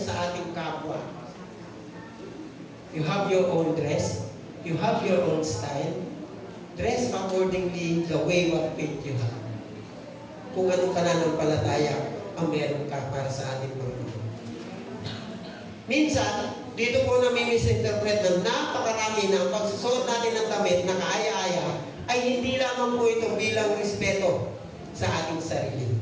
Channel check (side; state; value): both; identical; correlation 1.00